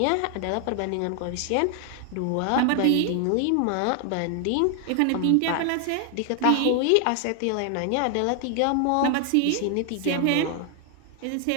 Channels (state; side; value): different; both; correlation 0.00